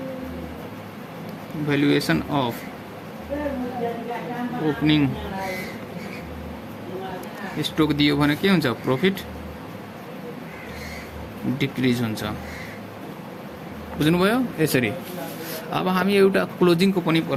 valuation of opening stock दियो भने के हुन्छ प्रॉफिट डिक्रिज हुन्छ। बुझ्नुभयो यसरी। अब हामी एउटा क्लोजिङको पनि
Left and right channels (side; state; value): both; identical; correlation 1.00